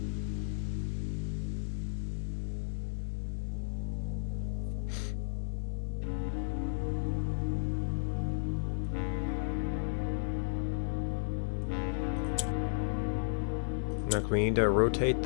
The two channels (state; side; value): silent; right; 55 dB below the other